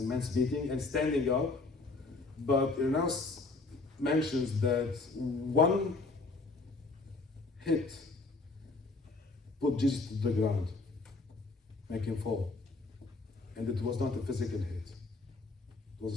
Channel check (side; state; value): right; quieter; 3.6 dB